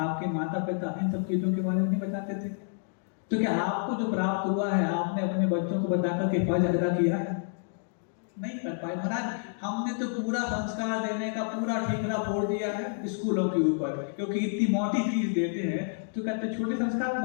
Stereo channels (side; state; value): right; silent; digital silence